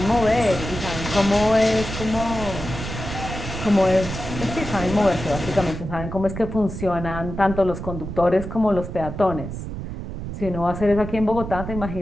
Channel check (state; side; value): noise; right; rumble, 7 dB below the sound